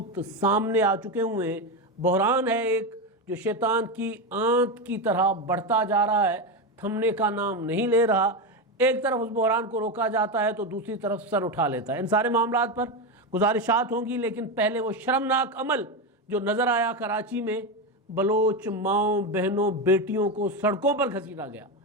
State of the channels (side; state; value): both; normal; correlation 0.13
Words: سامنے آ چکے ہوئے ہیں۔ بحران ہے ایک جو شیطان کی آنت کی طرح بڑھتا جا رہا ہے، تھمنے کا نام نہیں لے رہا۔ ایک طرف اس بحران کو روکا جاتا ہے تو دوسری طرف سر اٹھا لیتا ہے۔ ان سارے معاملات پر گزارشات ہوں گی، لیکن پہلے وہ شرمناک عمل جو نظر آیا کراچی میں، بلوچ ماؤں بہنوں بیٹیوں کو سڑکوں پر گھسیٹا گیا،